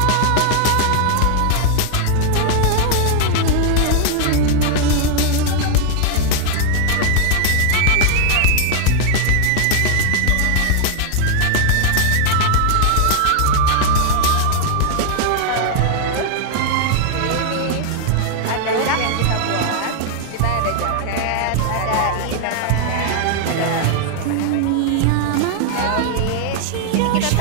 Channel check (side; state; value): both; different; correlation 0.00